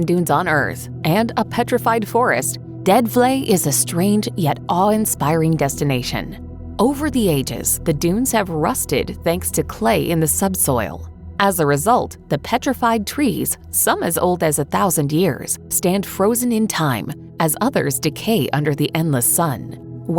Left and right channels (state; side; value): identical; both; correlation 1.00